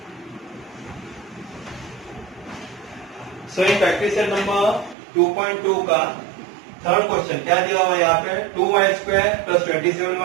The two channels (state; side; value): drops out; left; at 5.0 s